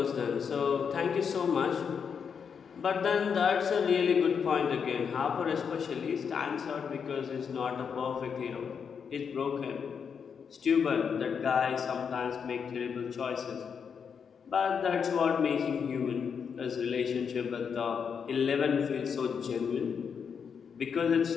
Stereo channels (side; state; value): right; quieter; 6.7 dB